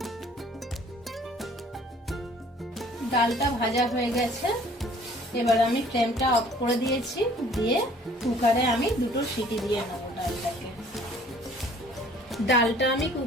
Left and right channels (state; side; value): normal; both; correlation 0.55